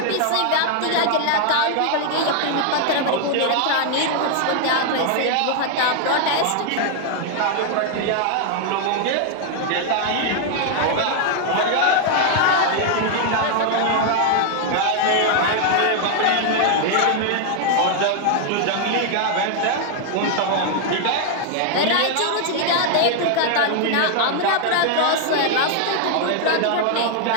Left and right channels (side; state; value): both; different; correlation 0.00